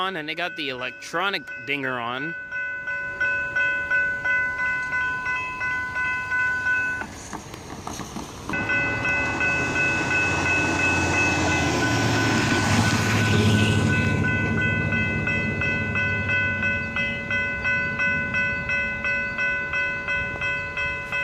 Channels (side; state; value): both; identical; correlation 1.00